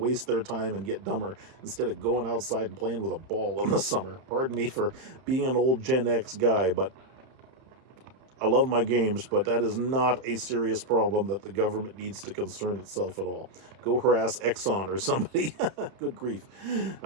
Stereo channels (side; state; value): left; late; 31 ms